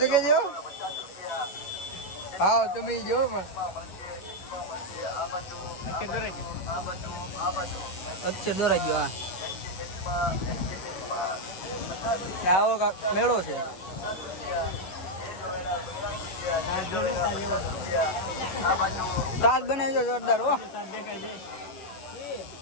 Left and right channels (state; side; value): late; right; 11 ms